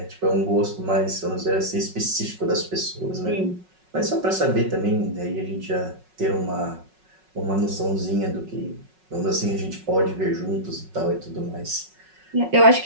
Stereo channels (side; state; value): left; late; 5.4 ms